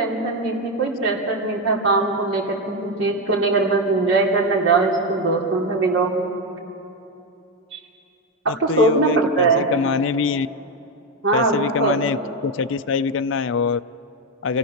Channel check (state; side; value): normal; both; correlation 0.09